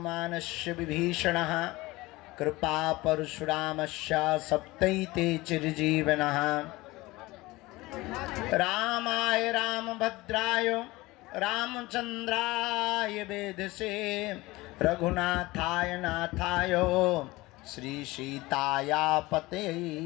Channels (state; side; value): quieter; right; 20.4 dB